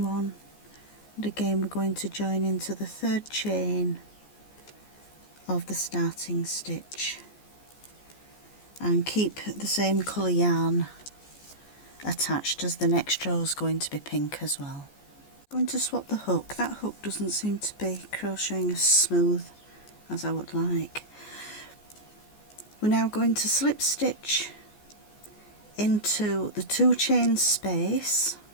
1, and again we're going to join into the 3rd chain of the starting stitch and keep the same colour yarn attached, as the next row is going to be pink as well. I'm going to swap the hook. That hook doesn't seem to be crocheting as smooth as I would like. We're now going to slip stitch into the 2 chain space,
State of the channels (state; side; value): late; right; 14 ms